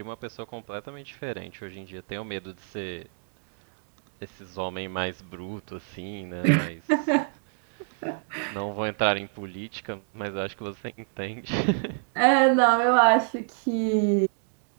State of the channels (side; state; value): left; silent; 60 dB below the other